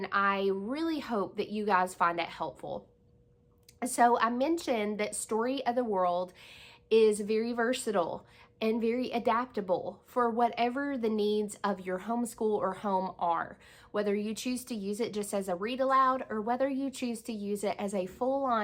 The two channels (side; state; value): both; identical; correlation 1.00